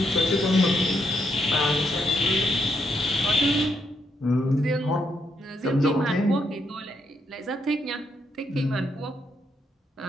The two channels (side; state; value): both; normal; correlation 0.78